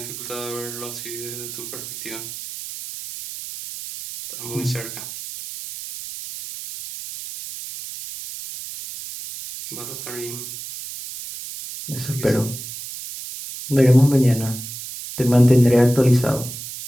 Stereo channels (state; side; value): noise; right; hiss, 10 dB below the sound